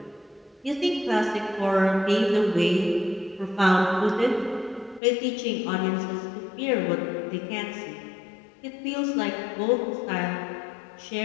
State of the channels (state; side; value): drops out; right; at 5.0 s